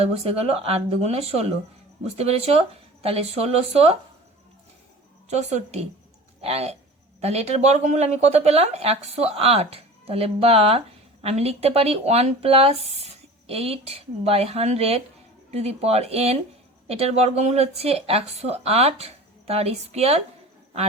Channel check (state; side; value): normal; both; correlation 0.38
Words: বসে গেল, 8 দুগুণে 16, বুঝতে পেরেছো। তাহলে 1664, তাহলে এটার বর্গমূল আমি কত পেলাম? 108। তাহলে বা আমি লিখতে পারি 1 + 8/100 টু দি পাওয়ার n, এটার বর্গমূল হচ্ছে 108 তার স্কোয়ার। আর